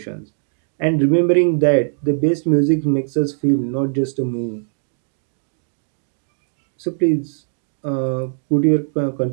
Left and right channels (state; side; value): silent; left; digital silence